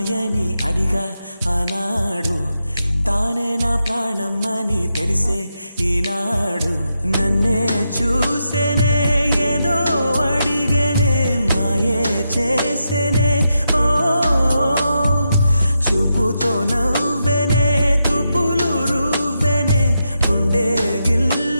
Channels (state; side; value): inverted; both; correlation -0.85